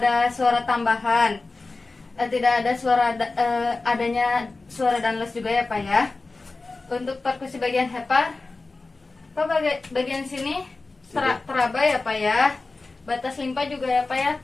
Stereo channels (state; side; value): quieter; right; 3.6 dB